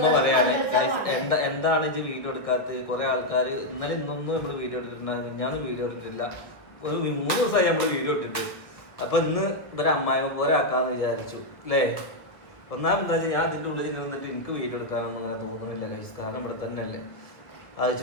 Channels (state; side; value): late; right; 1.6 ms